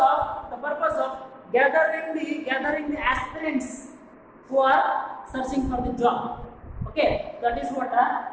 of gathering the aspirants who are searching for the job. Okay, that is what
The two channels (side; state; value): both; identical; correlation 1.00